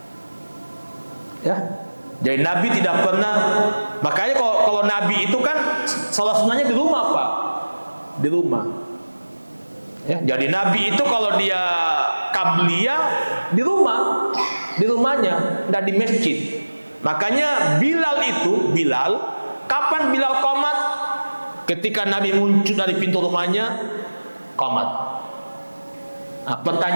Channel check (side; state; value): both; inverted; correlation -1.00